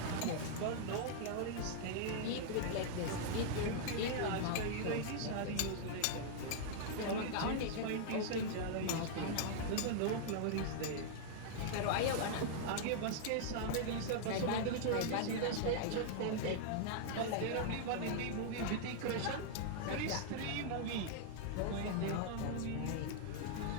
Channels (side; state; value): both; different; correlation -0.01